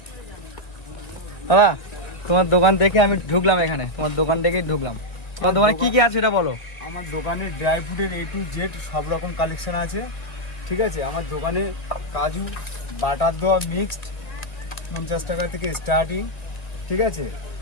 দাদা তোমার দোকান দেখে আমি ঢুকলাম, এখানে তোমার দোকান দেখেই ঢুকলাম। তোমার দোকানে কি কি আছে এটা বলো। আমার দোকানে ড্রাই ফ্রুটের A to Z সব রকম কালেকশন আছে, ঠিক আছে। আমার দোকানে কাজু বাটার দেওয়া মিক্সড 50 টাকা থেকে স্টার্টিং, ঠিক আছে।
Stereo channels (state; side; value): late; right; 2.1 ms